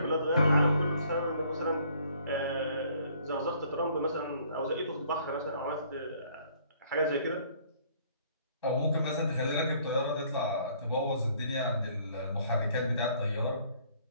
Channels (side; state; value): both; inverted; correlation -0.60